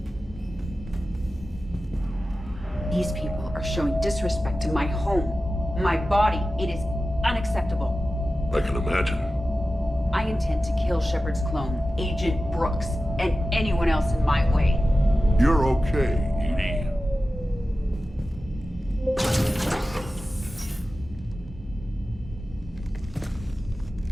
These people are showing disrespect to my home, my body. It is unacceptable. I can imagine. I intend to kill Shepard's clone, Agent Brooks, and anyone else in my way. You're okay, Edie.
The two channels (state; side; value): normal; both; correlation 0.94